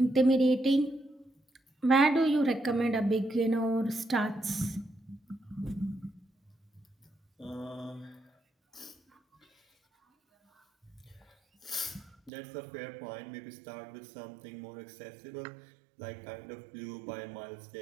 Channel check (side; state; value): left; drops out; at 12.3 s